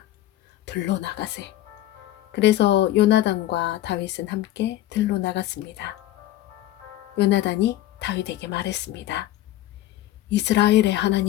들로 나가세. 그래서 요나단과 다윗은 함께 들로 나갔습니다. 요나단이 다윗에게 말했습니다. 이스라엘의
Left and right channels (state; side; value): quieter; right; 14.6 dB